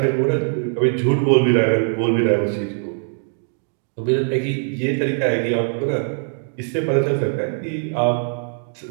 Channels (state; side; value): silent; left; digital silence